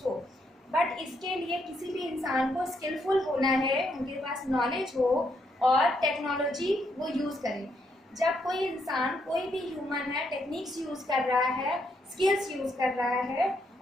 But इसके लिए किसी भी इंसान को स्किलफुल होना है, उनके पास नॉलेज हो और टेक्नोलॉजी वो यूज़ करे। जब कोई इंसान, कोई भी ह्यूमन है, टेक्निक्स यूज़ कर रहा है, स्किल्स यूज़ कर रहा है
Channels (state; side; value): normal; both; correlation 0.76